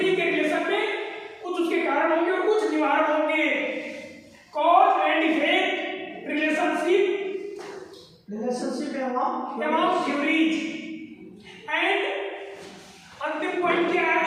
के रिलेशन में कुछ उसके कारण होंगे और कुछ निवारण होंगे। Cause and effect, relationship among theories. And अंतिम पॉइंट क्या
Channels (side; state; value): both; identical; correlation 1.00